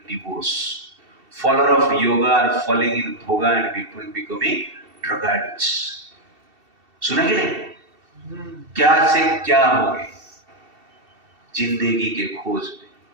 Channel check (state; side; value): late; left; 2.7 ms